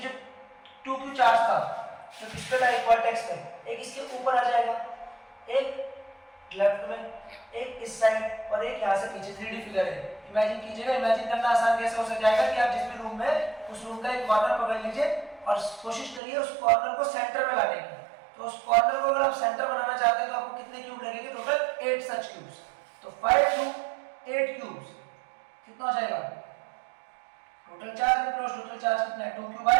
2q चार्ज था जो किस पे था, एक वर्टेक्स पे, एक इसके ऊपर आ जाएगा, एक लेफ्ट में, एक इस साइड और एक यहाँ से पीछे। 3D फिगर है, इमेजिन कीजिएगा। इमेजिन करना आसान कैसे हो जाएगा कि आप जिस भी रूम में उस रूम का एक कॉर्नर पकड़ लीजिए और कोशिश करिए उस कॉर्नर को सेंटर में लाने की। तो उस कॉर्नर को अगर आप सेंटर बनाना चाहते हैं तो आपको कितने क्यूब लगेंगे, टोटल 8 सच क्यूब्स। तो 5 क्यूब 8 क्यूब्स कितना हो जाएगा, total charge enclose, total charge कितना है 2q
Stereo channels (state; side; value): drops out; left; at 16.2 s